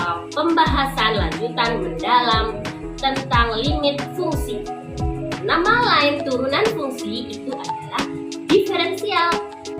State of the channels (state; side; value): identical; both; correlation 1.00